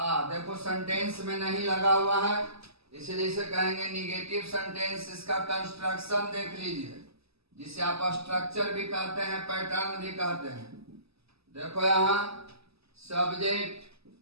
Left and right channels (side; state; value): left; late; 0.78 ms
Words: देखो सेंटेंस में नहीं लगा हुआ है, इसलिए इसे कहेंगे निगेटिव सेंटेंस। इसका कंस्ट्रक्शन देख लीजिए, जिसे आप स्ट्रक्चर भी कहते हैं, पैटर्न भी कहते हैं। देखो यहां सब्जेक्ट,